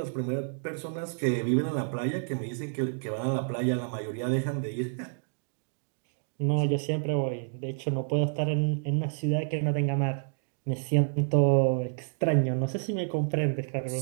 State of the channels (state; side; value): silent; left; digital silence